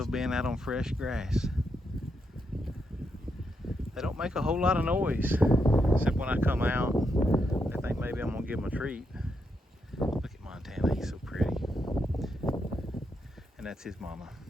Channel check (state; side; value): normal; both; correlation 0.81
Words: being out on fresh grass. They don't make a whole lot of noise, except when I come out. They think maybe I'm gonna give them a treat. Look at Montana, he's so pretty. And that's his mama,